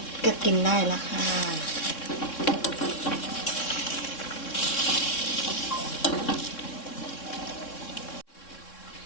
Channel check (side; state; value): right; late; 3.6 ms